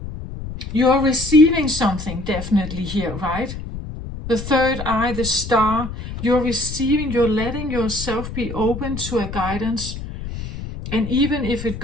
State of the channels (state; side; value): noise; left; rumble, 9 dB below the sound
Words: you're receiving something definitely here, right? The third eye, the star, you're receiving, you're letting yourself be open to a guidance. And even if it